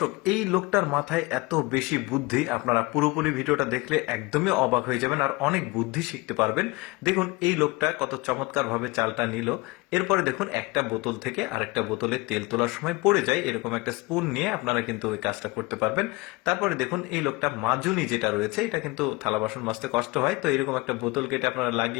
দর্শক, এই লোকটার মাথায় এত বেশি বুদ্ধি, আপনারা পুরোপুরি ভিডিওটা দেখলে একদমই অবাক হয়ে যাবেন আর অনেক বুদ্ধি শিখতে পারবেন। দেখুন এই লোকটা কত চমৎকার ভাবে চালটা নিল। এরপরে দেখুন একটা বোতল থেকে আরেকটা বোতলে তেল তোলার সময় পড়ে যায়, এরকম একটা স্পুন নিয়ে আপনারা কিন্তু ওই কাজটা করতে পারবেন। তারপরে দেখুন এই লোকটা মাজুনি যেটা রয়েছে, এটা কিন্তু থালা বাসন মাজতে কষ্ট হয়, তো এরকম একটা বোতল কেটে আপনারা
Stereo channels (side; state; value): right; quieter; 23.4 dB